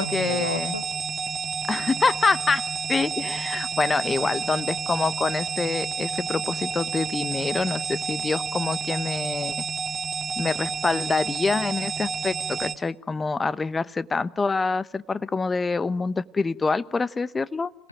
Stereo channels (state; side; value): normal; both; correlation 0.87